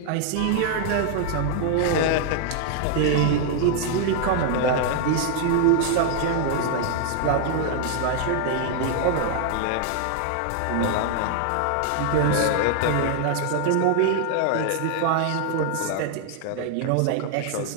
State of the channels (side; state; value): both; different; correlation 0.00